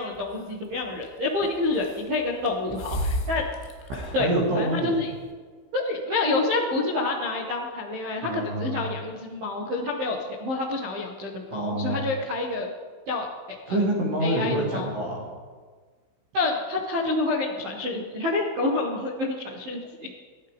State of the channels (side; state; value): left; late; 16 ms